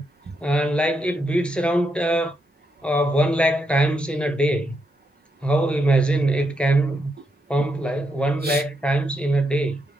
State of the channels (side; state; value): both; normal; correlation 0.81